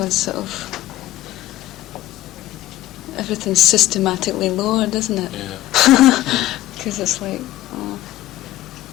sort of, everything's systematically lowered, isn't it? Yeah. Because it's like,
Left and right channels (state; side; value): quieter; right; 15.1 dB